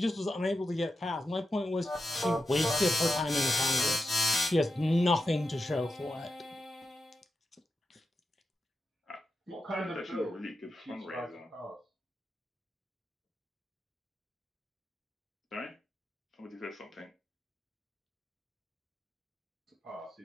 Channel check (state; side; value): normal; both; correlation 0.89